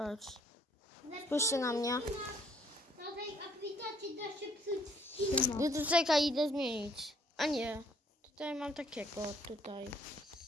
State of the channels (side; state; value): both; normal; correlation 0.64